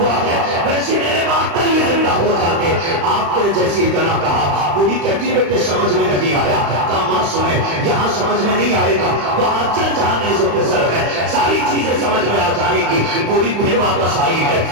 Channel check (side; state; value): left; late; 35 ms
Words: ہے ویسے میرے 72 بھی زندہ ہو جاتے۔ آپ نے جیسی اتنا کہا، بوڑھی کہتی بیٹے سمجھ میں نہیں آیا۔ کہا ماں سنے یہاں سمجھ میں نہیں آئے گا، وہاں چل جہاں نیزوں پہ سر ہے ساری چیزیں سمجھ میں آ جائے گی۔ بوڑھی پھر واپس آئی ہے،